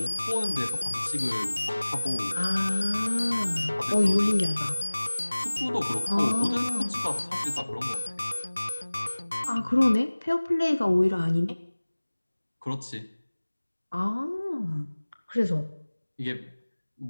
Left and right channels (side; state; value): both; inverted; correlation -1.00